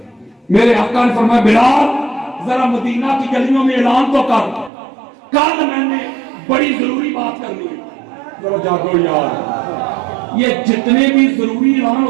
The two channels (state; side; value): drops out; left; at 4.7 s